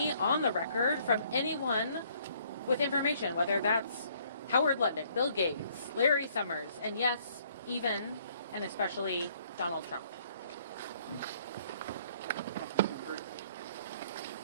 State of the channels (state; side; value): inverted; both; correlation -0.63